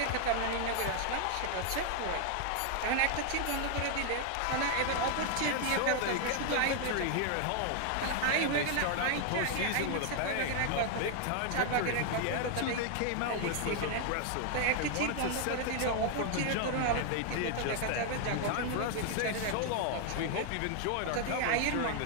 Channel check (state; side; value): different; both; correlation 0.00